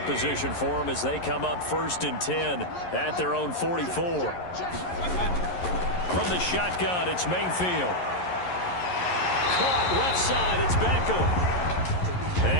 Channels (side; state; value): right; late; 11 ms